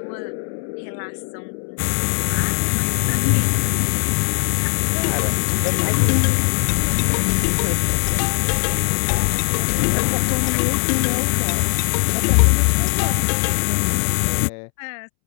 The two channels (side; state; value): right; silent; 66 dB below the other